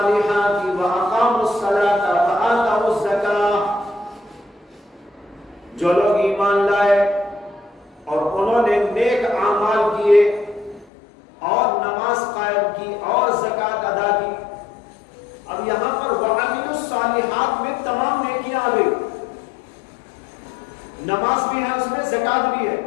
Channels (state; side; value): drops out; right; at 10.9 s